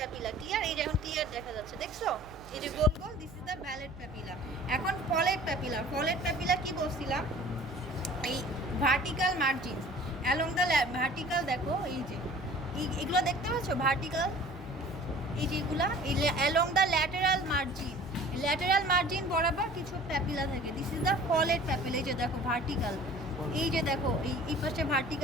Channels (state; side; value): noise; right; hum, 19 dB below the sound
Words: ক্লিয়ার? এই যে এখন ক্লিয়ার দেখা যাচ্ছে, দেখছো? এই যে গোল গোল, this is the vallate papilla. এখন ফলেট প্যাপিলা। ফলেট প্যাপিলা কি বলছিলাম? এই vertical margin along the vertical, দেখো এই যে এগুলো দেখতে পাচ্ছ ভার্টিক্যাল, এই যেগুলা এই along the lateral margin, lateral margin বরাবর কিছু প্যাপিলা থাকে। This is the folate papilla. এই যে দেখো ভার্টিক্যাল, এই যে দেখো এই পাশে